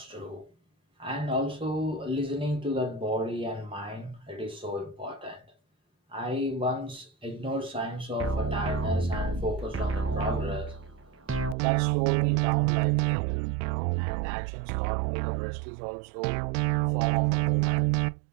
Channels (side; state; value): left; drops out; at 11.6 s